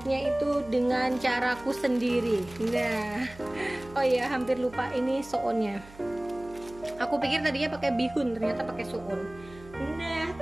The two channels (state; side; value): noise; right; hum, 20 dB below the sound